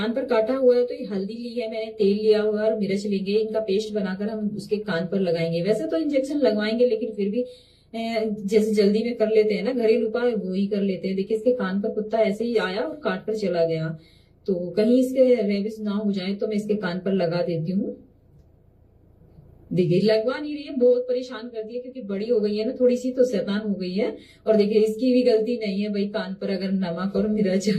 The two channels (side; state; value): both; identical; correlation 1.00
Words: पर काटा हुआ है तो ये हल्दी ली है मैंने, तेल लिया हुआ है और मिर्च लेंगे, इनका पेस्ट बनाकर हम उसके कान पर लगाएंगे। वैसे तो इंजेक्शन लगवाएंगे, लेकिन फिर भी जैसे जल्दी में कर लेते हैं ना, घरेलू उपाय वो ही कर लेते हैं। देखिए इसके कान पर कुत्ता ऐसे ही आया और काट कर चला गया, तो कहीं इसके रेबिस ना हो जाए तो मैं इसके कान पर लगा देती हूँ। देखिए लगवा नहीं रही है, बहुत परेशान करती है क्योंकि बड़ी हो गई है ना थोड़ी सी, तो शैतान हो गई है। और देखिए इसकी भी गलती नहीं है भाई, कान पर अगर नमक और मिर्च